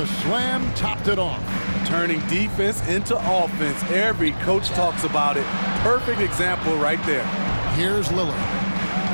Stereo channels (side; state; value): both; inverted; correlation -1.00